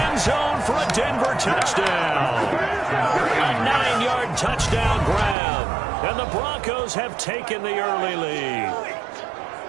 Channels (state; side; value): drops out; left; at 5.4 s